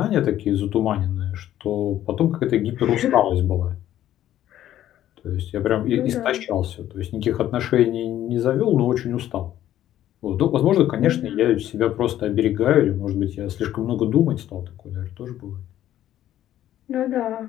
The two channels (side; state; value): right; quieter; 12.4 dB